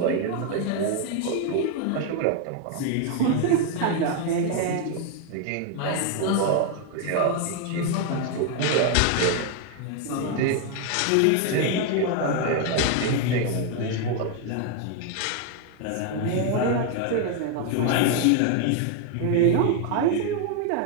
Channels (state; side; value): different; both; correlation 0.01